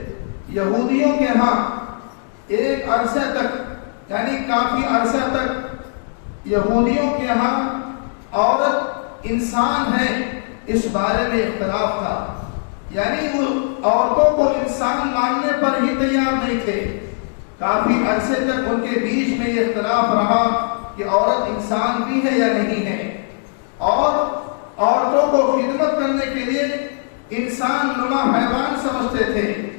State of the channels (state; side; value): silent; right; 66 dB below the other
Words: یہودیوں کے ہاں ایک عرصے تک، یعنی کافی عرصہ تک یہودیوں کے ہاں عورت انسان ہے اس بارے میں اختلاف تھا، یعنی وہ عورتوں کو انسان ماننے پر ہی تیار نہیں تھے۔ کافی عرصے تک ان کے بیچ میں یہ اختلاف رہا کہ عورت انسان بھی ہے یا نہیں ہے، اور عورتوں کو خدمت کرنے کے لیے انسان نما حیوان سمجھتے تھے۔